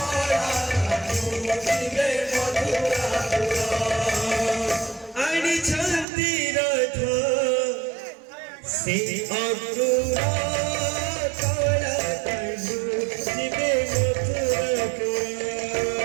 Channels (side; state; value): left; drops out; at 6.1 s